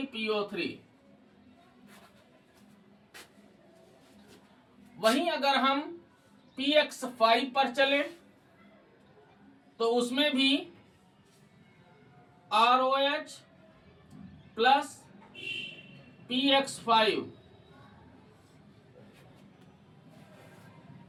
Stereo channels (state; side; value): identical; both; correlation 1.00